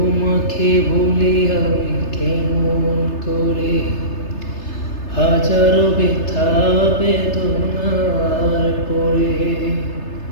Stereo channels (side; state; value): right; late; 3.3 ms